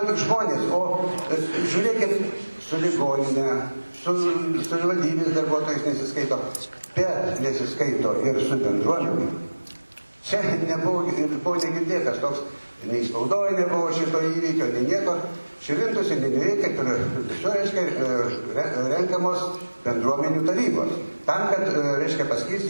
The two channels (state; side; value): inverted; both; correlation -1.00